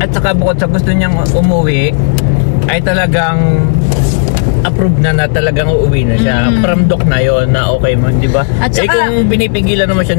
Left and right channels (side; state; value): right; silent; digital silence